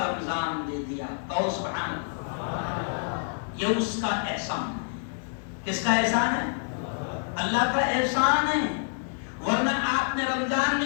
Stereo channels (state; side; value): silent; right; digital silence